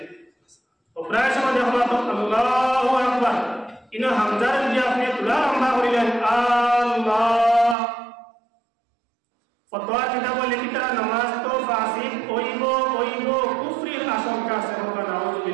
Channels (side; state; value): left; drops out; at 7.8 s